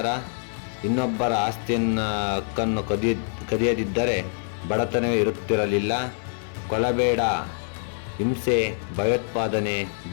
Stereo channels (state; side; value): silent; right; digital silence